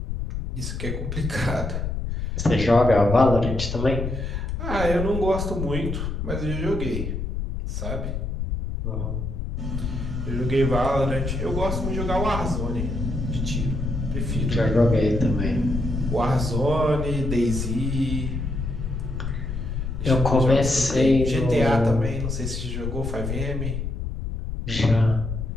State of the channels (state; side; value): noise; left; rumble, 4 dB below the sound